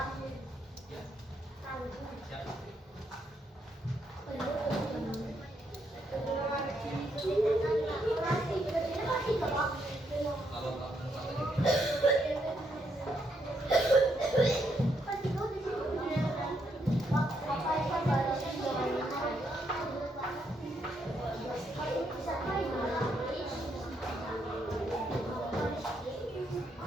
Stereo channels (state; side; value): normal; both; correlation 0.77